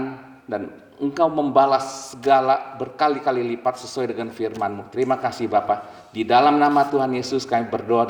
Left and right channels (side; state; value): both; identical; correlation 1.00